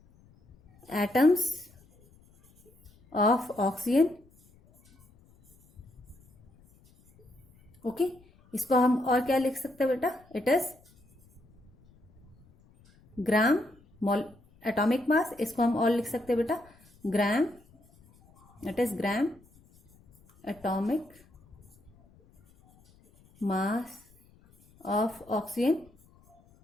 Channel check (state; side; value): noise; left; rumble, 29 dB below the sound